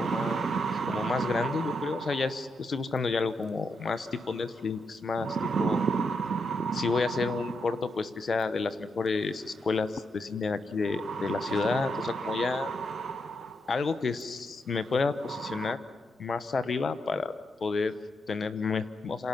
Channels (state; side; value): normal; both; correlation 0.82